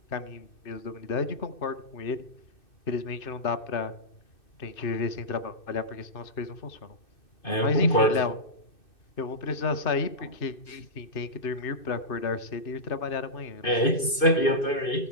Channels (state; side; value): late; right; 2.6 ms